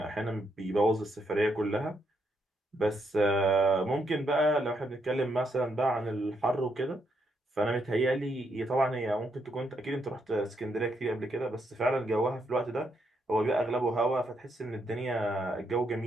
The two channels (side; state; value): both; normal; correlation 0.77